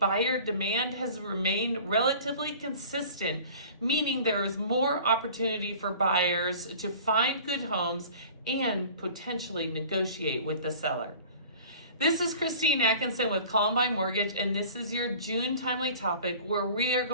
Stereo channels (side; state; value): both; inverted; correlation -0.44